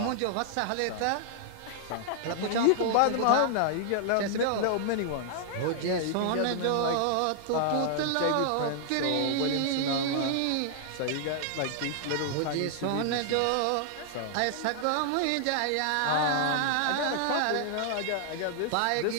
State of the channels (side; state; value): both; different; correlation 0.00